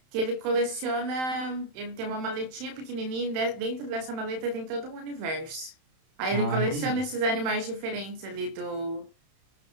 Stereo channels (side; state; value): left; late; 31 ms